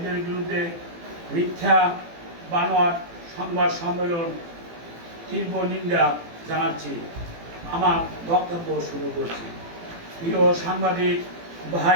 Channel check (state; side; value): late; left; 18 ms